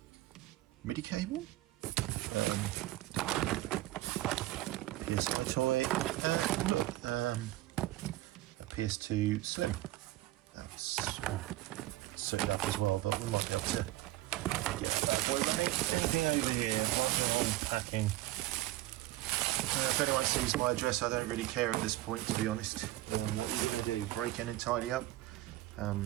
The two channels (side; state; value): left; quieter; 16.6 dB